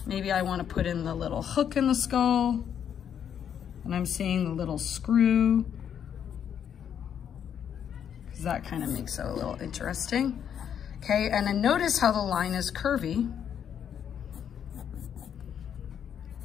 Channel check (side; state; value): right; quieter; 8.6 dB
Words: Maybe I want to put in the little hook in the skull and I'm seeing the little screw because that kind of makes it a little interesting. Okay, and then notice how the line is curvy.